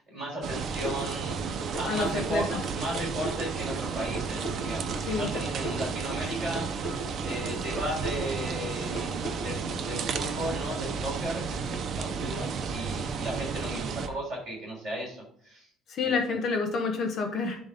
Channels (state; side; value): normal; both; correlation 0.58